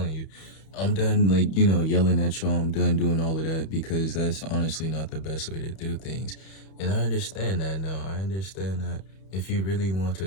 you. I'm done, like, you know, yelling at y'all. I'm done doing all of that because that's honestly not the best way to do things. And I understand that now. I understand that if you really want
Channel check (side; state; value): right; late; 31 ms